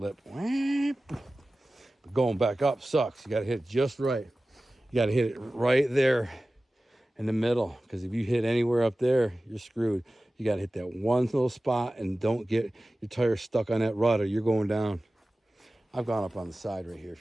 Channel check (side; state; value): both; normal; correlation 0.96